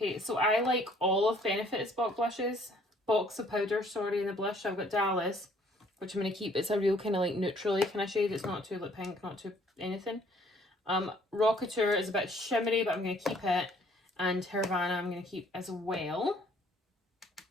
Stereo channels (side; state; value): both; normal; correlation 0.60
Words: so I like all of Benefit's box of powders, sorry, in the blush. So I've got Dallas, which I'm going to keep. It's a real kind of like neutrally kind of shade. It's not too like pink, not too anything. Rocketeur is a bit shimmery, but I'm going to keep it. And Havana I'm going to keep as well.